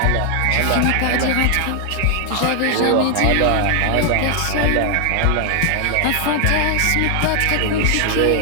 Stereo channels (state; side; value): different; both; correlation 0.00